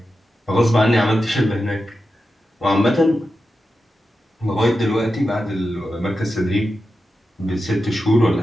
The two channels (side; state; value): both; normal; correlation 0.90